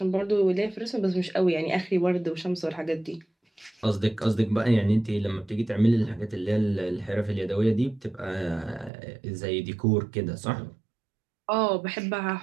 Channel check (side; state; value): left; drops out; at 8.9 s